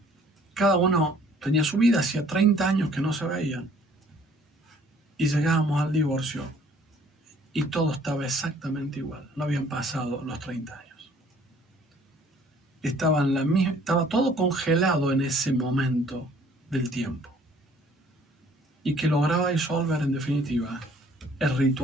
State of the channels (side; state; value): both; normal; correlation 0.57